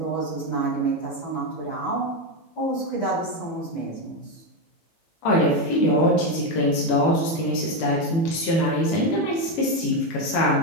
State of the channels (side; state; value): right; late; 18 ms